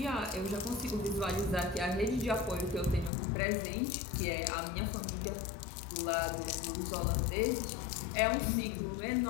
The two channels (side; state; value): right; drops out; at 3.1 s